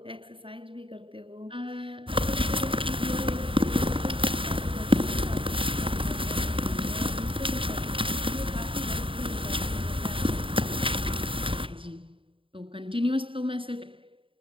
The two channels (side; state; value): left; late; 0.25 ms